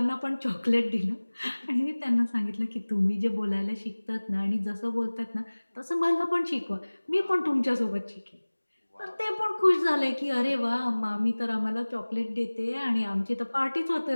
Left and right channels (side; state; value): both; inverted; correlation -1.00